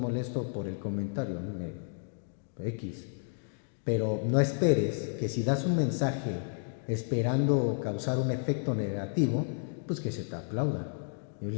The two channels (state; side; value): silent; right; 57 dB below the other